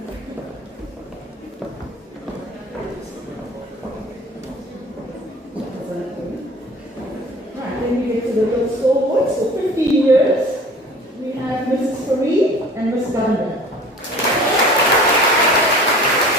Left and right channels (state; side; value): normal; both; correlation 0.45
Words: Then we get to the real stalwarts. For 15 years, we have Mrs. Fareed and Ms. Gunda.